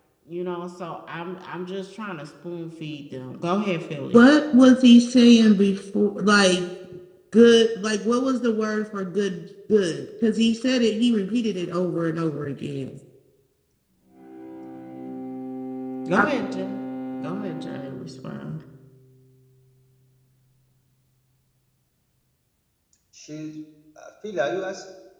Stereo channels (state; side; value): identical; both; correlation 1.00